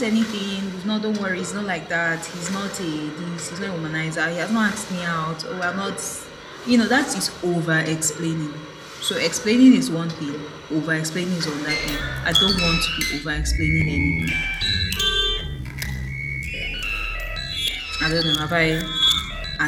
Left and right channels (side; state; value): both; identical; correlation 1.00